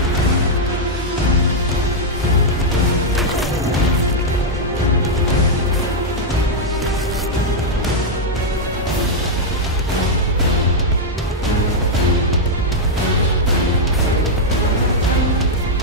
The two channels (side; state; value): both; normal; correlation -0.03